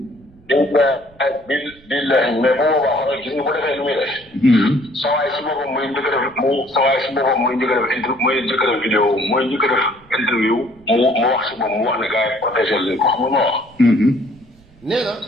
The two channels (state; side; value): noise; right; rumble, 28 dB below the sound